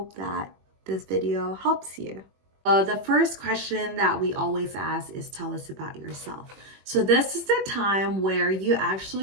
that this video helps you. The first question that we always ask is tell us about yourself. So this is the time where you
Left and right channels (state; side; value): late; left; 21 ms